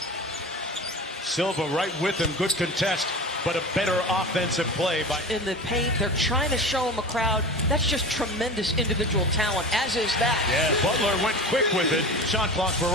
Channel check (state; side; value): normal; both; correlation 0.32